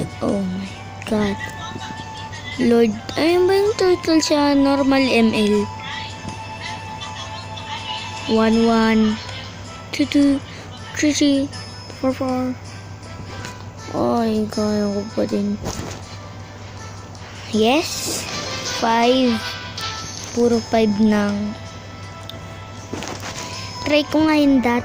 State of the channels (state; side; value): identical; both; correlation 1.00